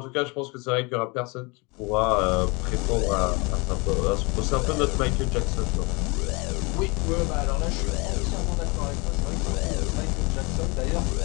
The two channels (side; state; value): right; quieter; 28.0 dB